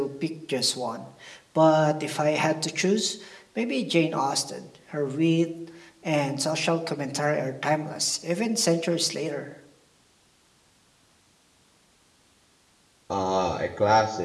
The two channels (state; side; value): identical; both; correlation 1.00